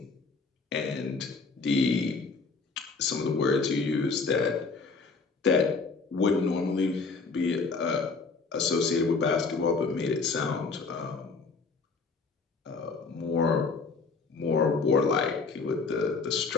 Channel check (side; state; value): right; quieter; 4.4 dB